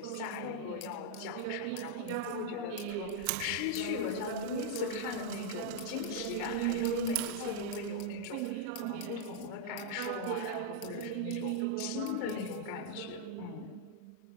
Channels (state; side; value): different; both; correlation -0.01